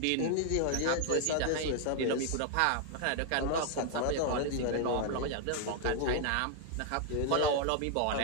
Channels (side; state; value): both; different; correlation 0.00